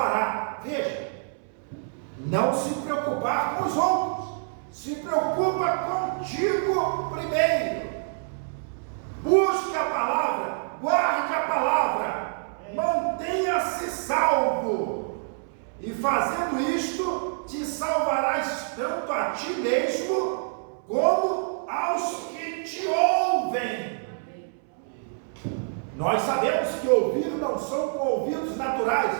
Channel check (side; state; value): left; silent; 60 dB below the other